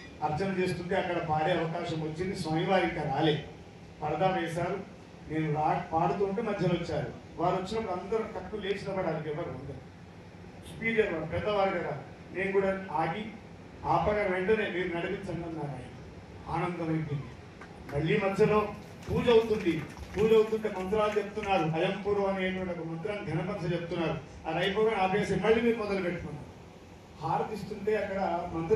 అర్చన చేస్తుంటే అక్కడ పాడే అవకాశం వచ్చింది. స్వామివారి ఇంకా రాలే, పరదా వేశారు. నేను పాడుతుంటే మధ్యలో వచ్చారు. వారు వచ్చినప్పుడు అందరూ తక్కువ లేచిన పడాలి, ఎవరు అందరు స్పీకర్ వారు పెద్దవారు కదా. నేను కూడా ఆగి ఆపగా వెంటనే మీరు నడిపించండి అన్నారు. ఆయన ఆనందం అయిపోయింది. మళ్ళీ మధ్యలో పూజ అవుతుంది. పూజ అవుతుంటే మంత్రాలు చెప్తున్నారు. అయంపూర్వ అనేటువంటి ఒక మంత్రాన్ని ఘనపరచ చెప్తున్నారు. అది అయిపోగా ఆపేసి మళ్ళీ మీరు మొదలు పెట్టుకున్నారు. హారతిస్తుంటే అక్కడ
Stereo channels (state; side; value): identical; both; correlation 1.00